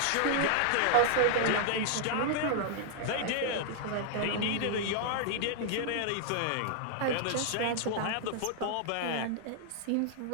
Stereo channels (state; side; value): different; both; correlation -0.01